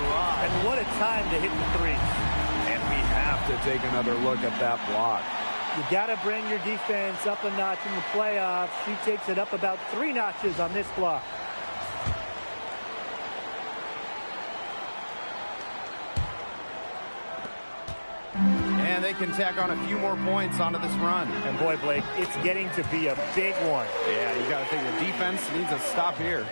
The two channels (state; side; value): inverted; both; correlation -1.00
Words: And what a time to hit the threes. And we have to take another look at that block. You got to bring your defense up a notch in the playoffs. She takes it up about 3 notches on this block. And they can tack on a few more points onto this run. And boy, Blake, it's getting to be a big one. Yeah, you got to think the defense needs a stop here.